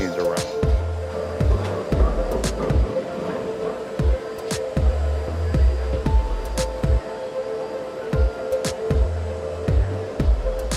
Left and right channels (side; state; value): both; identical; correlation 1.00